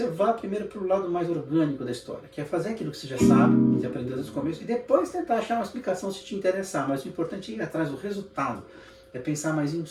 vá primeiro para o lado mais orgânico da história, que é fazer aquilo que você já sabe, que aprendeu desde o começo, e depois tentar achar uma explicação se te interessar. Mas o importante é ir atrás do resultado, é pensar mais em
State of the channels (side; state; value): both; identical; correlation 1.00